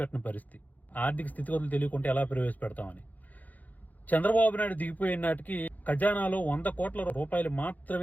పరిస్థితి. ఆర్థిక స్థితిగతులు తెలియకుంటే ఎలా ప్రవేశపెడతామని. చంద్రబాబు నాయుడు దిగిపోయిన నాటికి ఖజానాలో 100 కోట్ల రూపాయలు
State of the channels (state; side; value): late; right; 0.080 ms